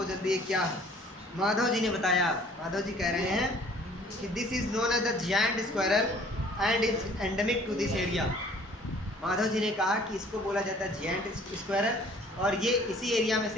जल्दी ये क्या है। माधव जी ने बताया, माधव जी कह रहे हैं कि this is known as the giant squirrel and is endemic to this area. Madhav ji ने कहा कि इसको बोला जाता है जायंट स्क्वायरल, और ये इसी एरिया में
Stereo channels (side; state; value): both; normal; correlation 0.54